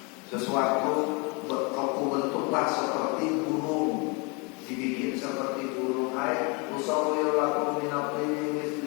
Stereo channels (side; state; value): right; quieter; 30.4 dB